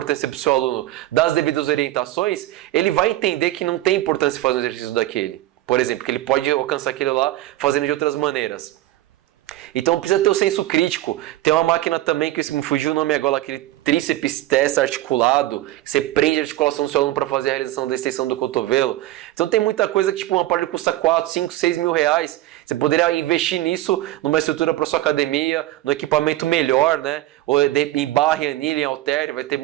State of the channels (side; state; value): left; quieter; 15.9 dB